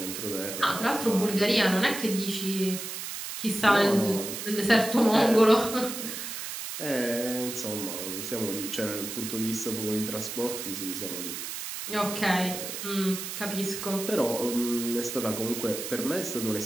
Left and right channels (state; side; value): noise; right; hiss, 6 dB below the sound